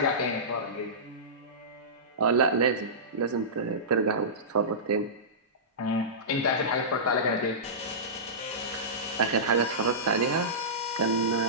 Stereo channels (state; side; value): normal; both; correlation -0.20